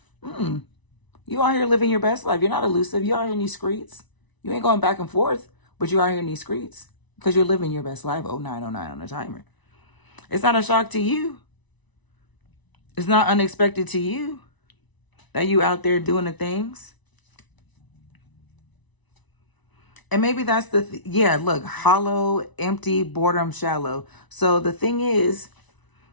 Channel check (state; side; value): late; right; 1.0 ms